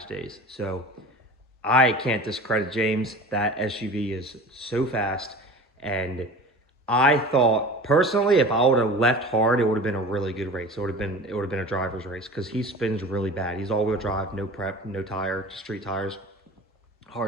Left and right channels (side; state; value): both; normal; correlation 0.37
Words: days. So I can't discredit James. That SUV is so fast, and I thought personally, if I would have left hard, it would have been a really good race. It would have been a driver's race because he spins really bad. He's all-wheel drive, no prep, no tire, street tires,